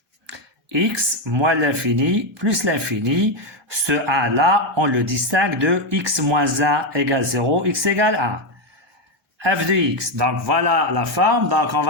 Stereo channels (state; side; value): normal; both; correlation 0.06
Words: x moins l'infini plus l'infini. Ce 1-là, on le distingue de x moins 1 égale 0, x égale 1. f de x. Donc, voilà la forme. Donc, on